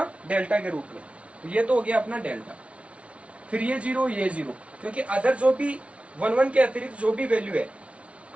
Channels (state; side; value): late; left; 0.062 ms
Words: डेल्टा के रूप में। तो ये तो हो गया अपना डेल्टा, फिर ये 0 ये 0, क्योंकि अदर जो भी 11 के अतिरिक्त जो भी वैल्यू है